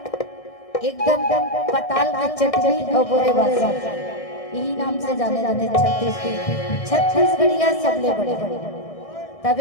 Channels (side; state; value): right; late; 1.6 ms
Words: एकदम पताल की चटनी और बोले बादशाह यही नाम से जाने जाते छत्तीसगढ़िया सबले बड़े